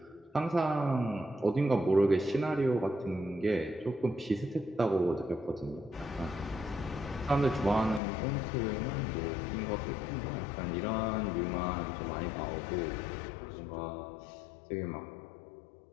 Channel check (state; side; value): drops out; right; at 8.0 s